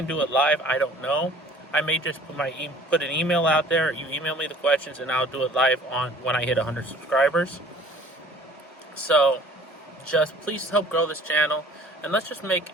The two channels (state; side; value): normal; both; correlation 0.51